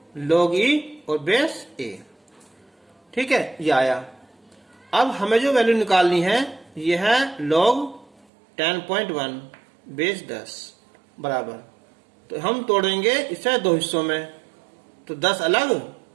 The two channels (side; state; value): left; drops out; at 8.2 s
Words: log e और बेस a, ठीक है, ये आया। अब हमें जो वैल्यू निकालनी है ये है log 10.1 बेस 10 बराबर, तो हम तोड़ेंगे इसे दो हिस्सों में, तो 10 अलग